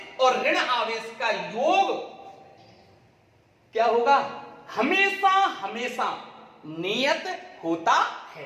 और ऋण आवेश का योग क्या होगा? हमेशा हमेशा नियत होता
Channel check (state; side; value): identical; both; correlation 1.00